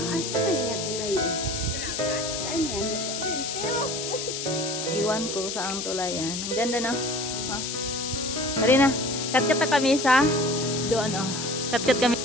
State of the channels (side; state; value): left; noise; hiss, 4 dB below the sound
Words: saan nga tulay? Saan yan? iwan ko sa ang tulay yan. Ang ganda na. Marina, kat kami sa doon Kat